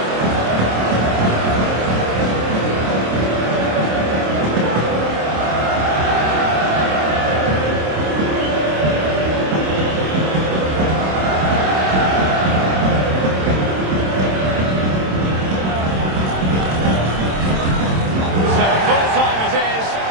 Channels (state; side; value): late; left; 27 ms